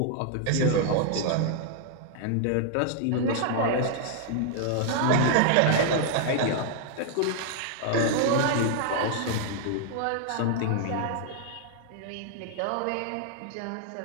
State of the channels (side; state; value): both; different; correlation -0.01